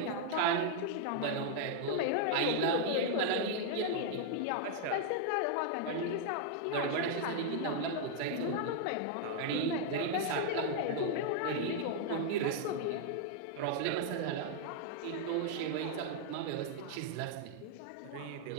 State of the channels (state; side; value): different; both; correlation 0.00